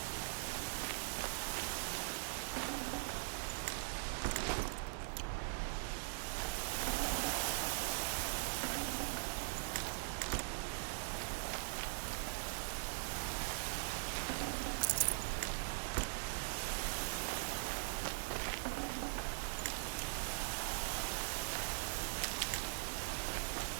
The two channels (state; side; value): silent; left; digital silence